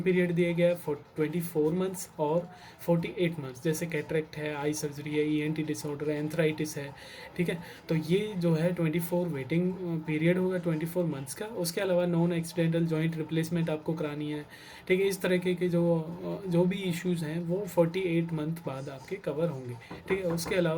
पीरियड दिया गया है 24 मंथ्स और 48 मंथ्स, जैसे कैटरेक्ट है, आई सर्जरी है, ईएनटी डिसऑर्डर है, एंथराइटिस है, ठीक है। तो ये जो है 24 वेटिंग पीरियड होगा 24 मंथ्स का। उसके अलावा नॉन एक्सीडेंटल जॉइंट रिप्लेसमेंट आपको करानी है, ठीक है। इस तरह के जो भी इश्यूज़ हैं वो 48 मंथ बाद आपके कवर होंगे, ठीक है। उसके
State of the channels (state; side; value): identical; both; correlation 1.00